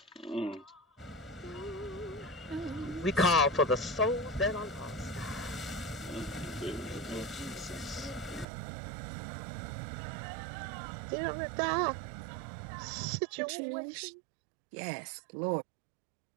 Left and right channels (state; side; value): drops out; left; at 8.5 s